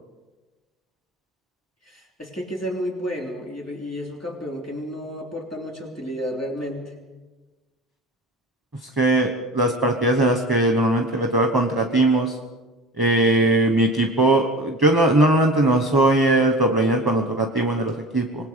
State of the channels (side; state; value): both; normal; correlation 0.36